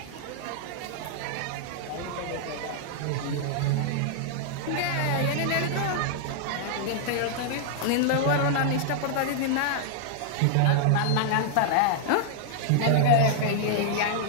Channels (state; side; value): different; both; correlation -0.01